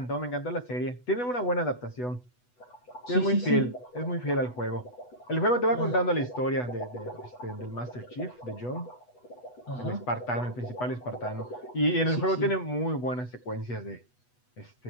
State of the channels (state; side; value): late; right; 8.1 ms